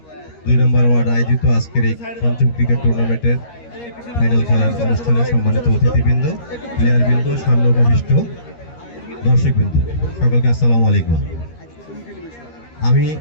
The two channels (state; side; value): late; right; 13 ms